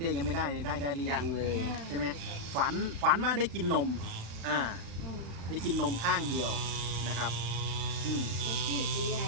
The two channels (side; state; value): left; late; 35 ms